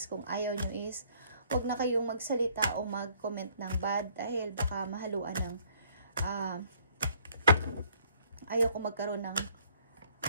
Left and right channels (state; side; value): inverted; both; correlation -0.63